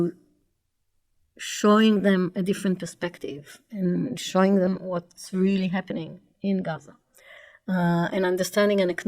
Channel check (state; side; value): identical; both; correlation 1.00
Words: showing them a different perspective and showing them what's really happening in Gaza, and understanding and